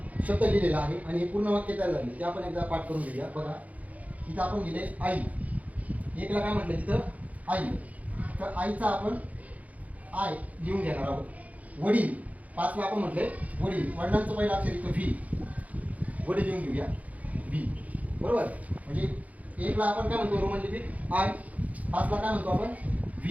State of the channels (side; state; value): left; late; 0.072 ms